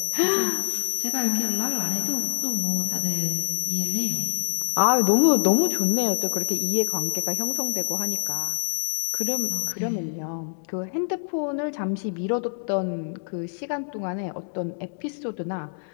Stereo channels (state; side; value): silent; right; 61 dB below the other